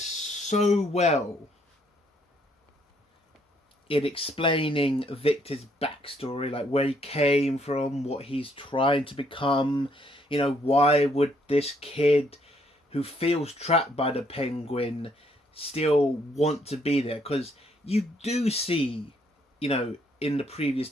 well in explaining Victor's backstory, like where he came from, what he's trying to become. Why would this kid who feels trapped by the penguin still want to be there? Because you do see, in the previous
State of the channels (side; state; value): both; normal; correlation 0.69